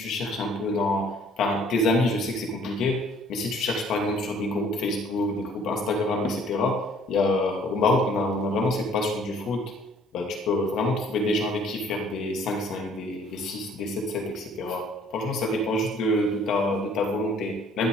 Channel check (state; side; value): normal; both; correlation 0.58